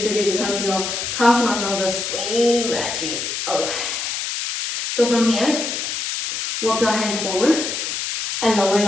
because your calf muscles are screaming at you. Okay. So from here, walk your hands forward and lower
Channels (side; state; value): left; noise; hiss, 3 dB below the sound